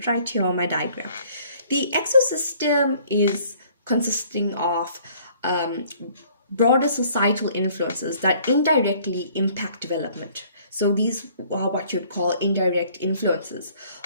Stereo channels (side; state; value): both; inverted; correlation -0.58